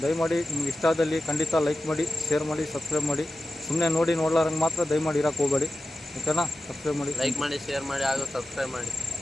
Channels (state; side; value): normal; both; correlation 0.93